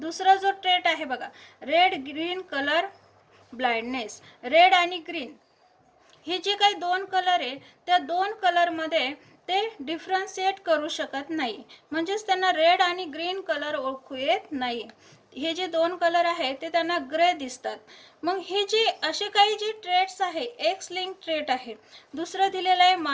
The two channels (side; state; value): both; identical; correlation 1.00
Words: जो ट्रेट आहे बघा, red green colour blindness. Red आणि ग्रीन हे जे काही दोन कलर आहे त्या दोन कलरमध्ये ते डिफरन्शिएट करू शकत नाही, म्हणजेच त्यांना रेड आणि ग्रीन कलर ओळखू येत नाही. हे जे दोन कलर आहेत ते त्यांना ग्रे दिसतात. मग हे जे असे काही जे ट्रेट्स आहे एक्स लिंक ट्रेट आहे. दुसरं दिलेलं आहे